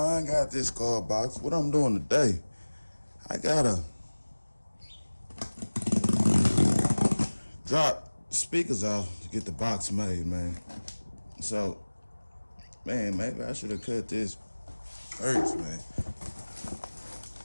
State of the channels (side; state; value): both; inverted; correlation -1.00